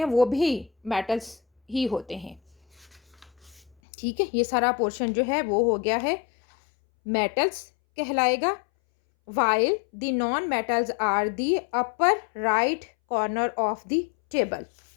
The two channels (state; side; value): drops out; right; at 3.8 s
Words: वो भी मेटल्स ही होते हैं. ठीक है, ये सारा पोर्शन जो है वो हो गया है मेटल्स कहलाएगा. While the non metals are the upper right corner of the table.